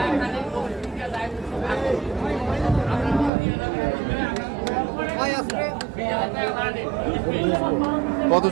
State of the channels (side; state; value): left; drops out; at 3.3 s